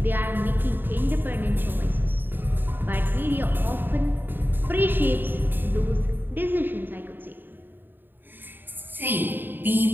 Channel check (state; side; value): late; left; 0.094 ms